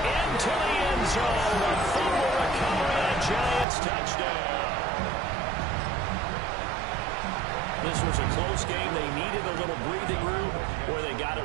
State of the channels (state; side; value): drops out; left; at 3.7 s